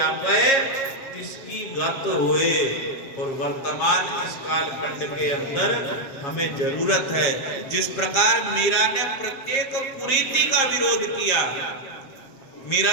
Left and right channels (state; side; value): late; right; 7.4 ms